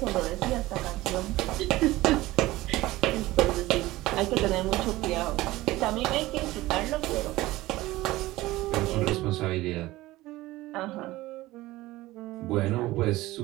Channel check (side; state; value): left; quieter; 18.0 dB